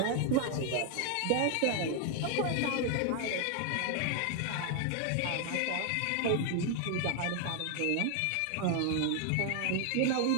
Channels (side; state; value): both; different; correlation 0.00